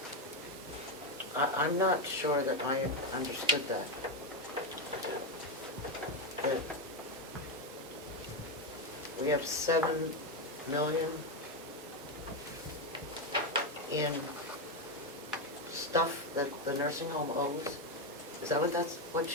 I'm not sure that I understood that. That we have $7 million in stuff that the nursing home owes? Is that what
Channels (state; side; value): normal; both; correlation 0.08